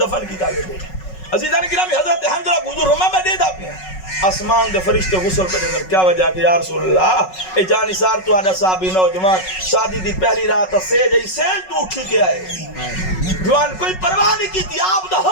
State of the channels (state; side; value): late; right; 5.4 ms